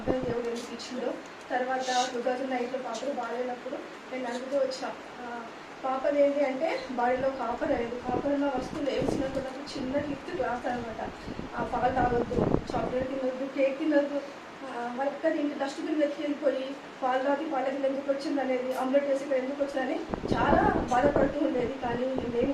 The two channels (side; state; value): both; identical; correlation 1.00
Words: దేవుడు ఎందుకు ఇచ్చిందో. తర్వాత 2008లో పాపలు బాగాలేనప్పుడు నేను అడుగుతూ వచ్చా పాపది ఏంటి అంటే బాడీలో కాపర్ అనేది, కాపర్ ఉన్న వస్తువులు వేసినప్పుడు చిన్న లిఫ్ట్ గ్లాస్ అనమాట. పాలు తాగొద్దు, చాక్లెట్ తినొద్దు, కేక్ తినొద్దు, వాళ్ళకి ఇంటి డస్ట్బిన్ వెతికి వెళ్ళిపోయి పాలు తాగి పాలకి ఎందుకు వచ్చింది అనేది, ఆమ్లెట్ వేసి ఇక్కడ ఎందుకు వచ్చిందని చాలా బాధపడుతూ ఉండేది. కానీ మేము